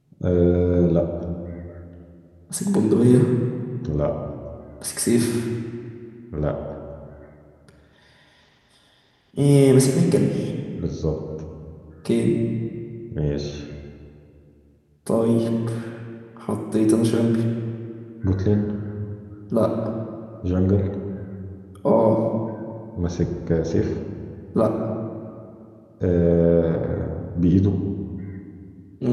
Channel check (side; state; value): both; identical; correlation 1.00